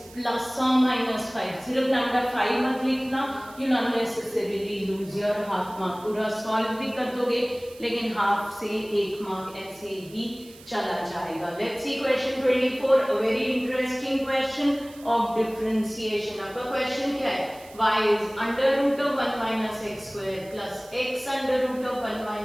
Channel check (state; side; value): noise; right; hiss, 22 dB below the sound